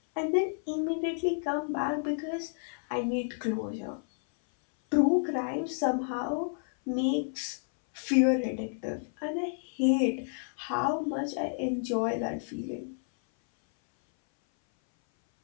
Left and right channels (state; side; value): silent; right; 58 dB below the other